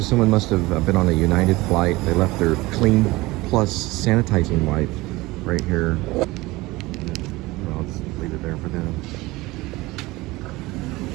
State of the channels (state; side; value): quieter; left; 20.6 dB